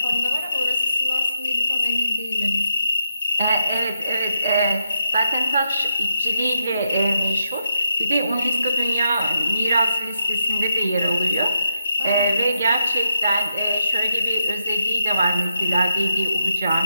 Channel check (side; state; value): both; inverted; correlation -0.83